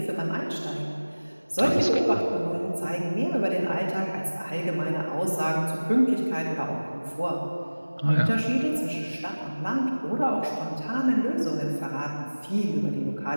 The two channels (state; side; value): inverted; both; correlation -1.00